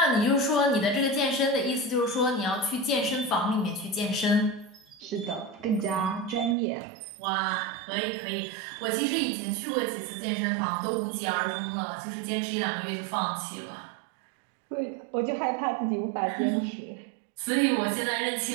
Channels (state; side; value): drops out; left; at 6.6 s